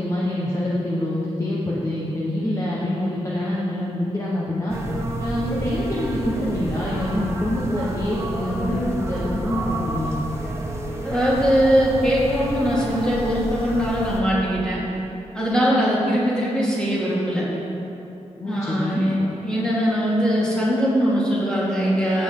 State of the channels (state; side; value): normal; both; correlation 0.82